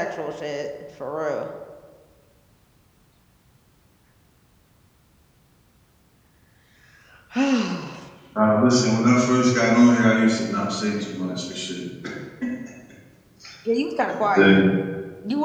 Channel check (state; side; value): identical; both; correlation 1.00